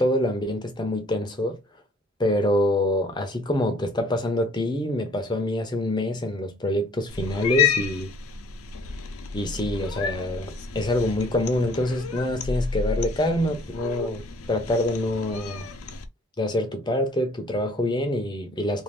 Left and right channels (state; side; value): normal; both; correlation 0.56